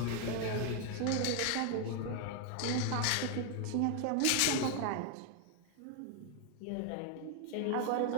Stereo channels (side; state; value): both; different; correlation 0.00